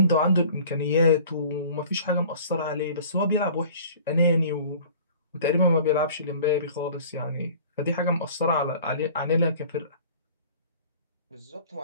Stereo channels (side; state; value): both; inverted; correlation -0.47